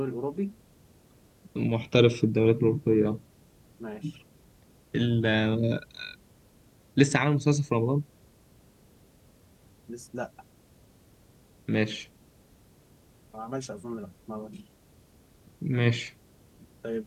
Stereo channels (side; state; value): both; identical; correlation 1.00